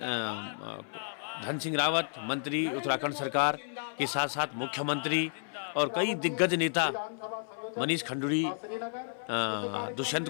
सिंह रावत, मंत्री उत्तराखंड सरकार के साथ साथ मुख्यमंत्री और कई दिग्गज नेता, मनीष खंडूरी, दुष्यंत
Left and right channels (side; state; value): right; silent; 56 dB below the other